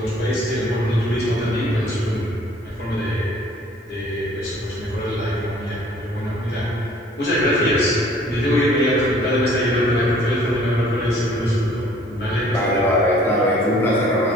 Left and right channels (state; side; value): normal; both; correlation 0.55